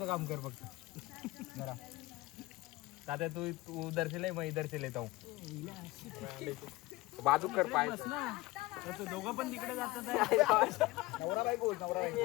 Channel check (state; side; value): quieter; right; 19.6 dB